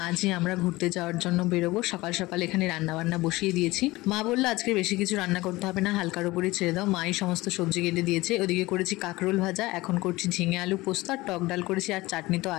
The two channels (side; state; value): right; quieter; 20.0 dB